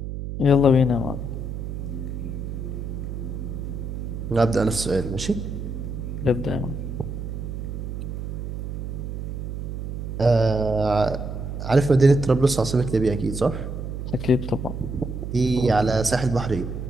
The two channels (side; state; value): right; noise; hum, 5 dB below the sound